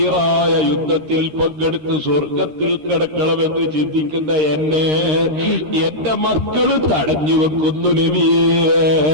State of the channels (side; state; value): left; late; 13 ms